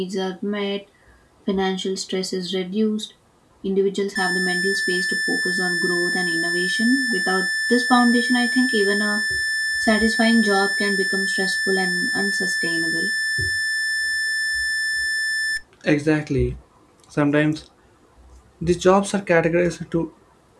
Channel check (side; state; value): both; identical; correlation 1.00